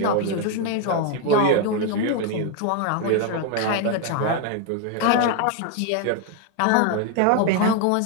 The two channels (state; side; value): different; both; correlation 0.01